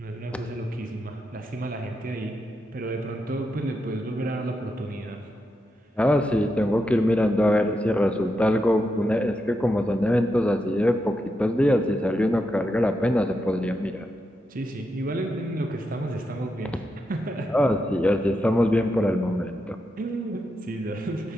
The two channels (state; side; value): normal; both; correlation 0.85